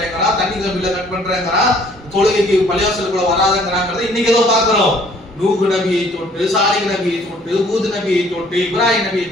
தண்ணி கம்பில கட் பண்றேங்கிறான், தொழுகைக்கு பள்ளிவாசலுக்குள்ள வராதங்கிறாங்கிறத இன்னைக்கு ஏதோ பாக்குறோம். நூஹ் நபியை தொட்டு, சாலிஹ் நபியை தொட்டு, ஹூத் நபியை தொட்டு, இப்ராஹிம் நபியை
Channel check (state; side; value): normal; both; correlation 0.58